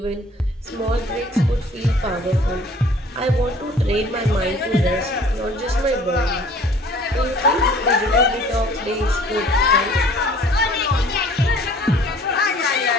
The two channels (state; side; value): normal; both; correlation 0.52